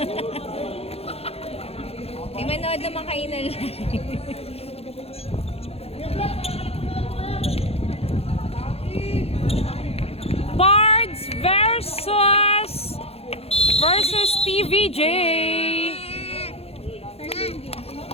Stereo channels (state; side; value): late; right; 0.29 ms